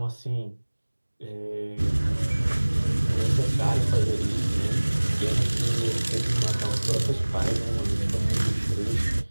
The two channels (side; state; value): both; inverted; correlation -1.00